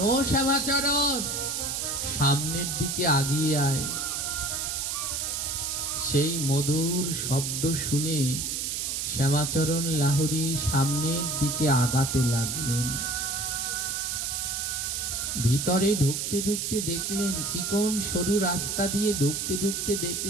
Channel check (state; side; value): noise; right; hiss, 2 dB below the sound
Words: ও শ্যামাচরণ, সামনের দিকে আগিয়ে আয়। সেই মধুর শব্দ শুনে শ্যামাচরণ লাহোরী সামনের দিকে আগাতে লাগলেন। ভিতরে ঢুকতে ঢুকতে দেখলেন, চিকন সরু রাস্তা দিয়ে ঢুকতে ঢুকতে